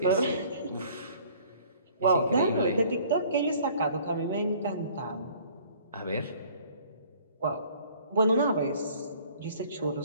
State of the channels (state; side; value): inverted; both; correlation -0.54